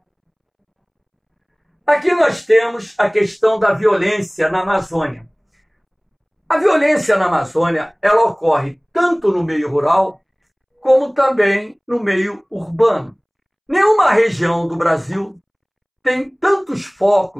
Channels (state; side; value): identical; both; correlation 1.00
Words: Aqui nós temos a questão da violência na Amazônia. A violência na Amazônia, ela ocorre tanto no meio rural, como também no meio urbano. Nenhuma região do Brasil tem tantos